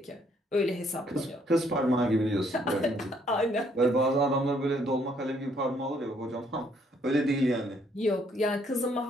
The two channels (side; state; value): both; normal; correlation 0.68